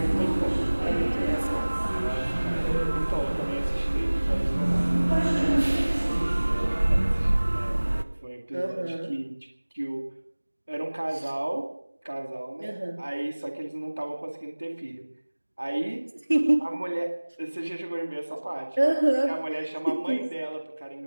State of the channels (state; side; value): inverted; both; correlation -1.00